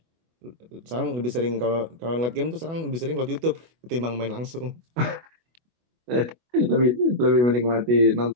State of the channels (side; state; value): left; late; 24 ms